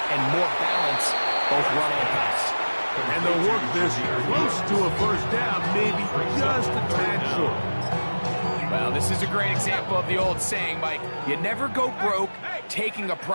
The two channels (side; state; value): both; inverted; correlation -1.00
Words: and more balance, both run and pass. And they'll work this close to a 1st down, maybe just a tad short. Well, this is a great example of the old saying, Mike, you never go broke taking a